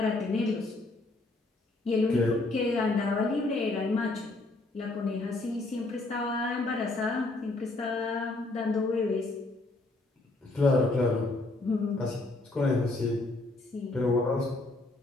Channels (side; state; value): right; quieter; 3.0 dB